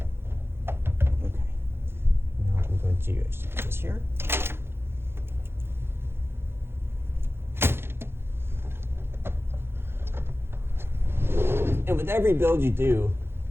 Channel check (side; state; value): left; late; 0.11 ms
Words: Okay. Now I'm going to actually put this here. And with every build you do,